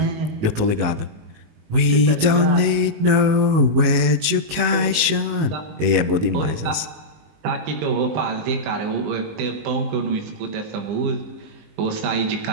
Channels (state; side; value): late; left; 19 ms